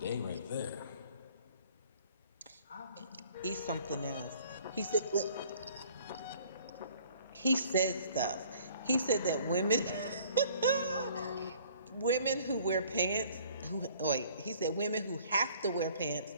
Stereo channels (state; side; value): inverted; both; correlation -0.55